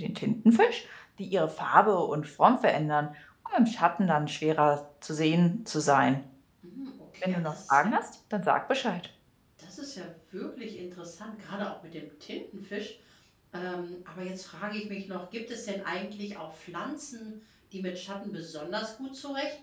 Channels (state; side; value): identical; both; correlation 1.00